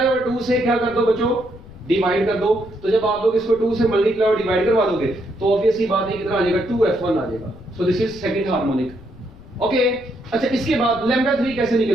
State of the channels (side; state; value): left; noise; rumble, 20 dB below the sound